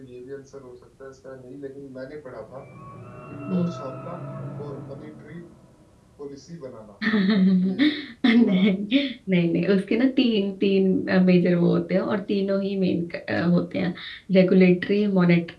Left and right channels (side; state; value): both; identical; correlation 1.00